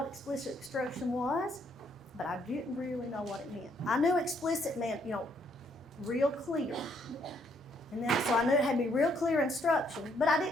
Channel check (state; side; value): normal; both; correlation 0.70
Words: explicit instruction was, but I didn't really know what it meant. I knew explicit meant, real clear. And then, so I knew it had to be real clear instruction, but I